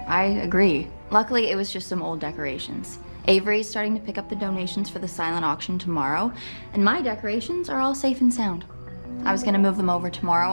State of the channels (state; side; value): inverted; both; correlation -1.00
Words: I agree. Luckily, it was just some old decorations. Avery's starting to pick up the donations for the silent auction tomorrow, and my decorations are all safe and sound. I was gonna move them over tomorrow